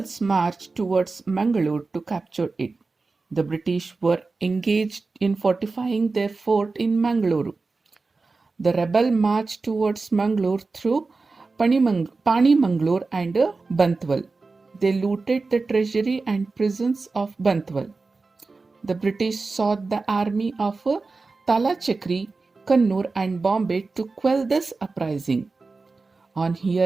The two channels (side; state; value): left; quieter; 3.9 dB